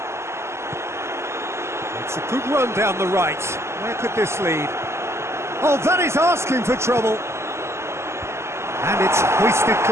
It's a good run down the right. Where could this lead? Oh, that is asking for trouble. And it's hoisted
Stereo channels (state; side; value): late; left; 0.13 ms